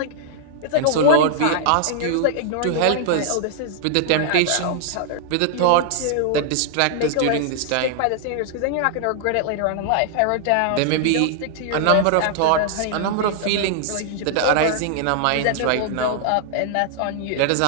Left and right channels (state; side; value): different; both; correlation 0.00